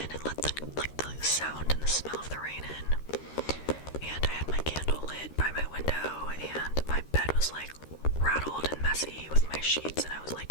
and let the sound and the smell of the rain in. And I had my candle lit by my window, and my bed was like rattled and messy with my sheets, and I was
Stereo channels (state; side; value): late; right; 13 ms